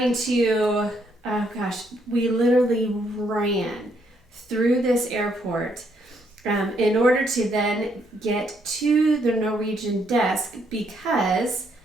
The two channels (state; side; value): normal; both; correlation 0.73